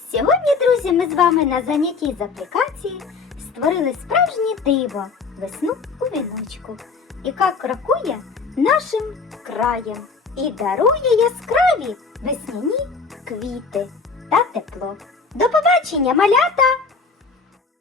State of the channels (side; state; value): right; quieter; 4.7 dB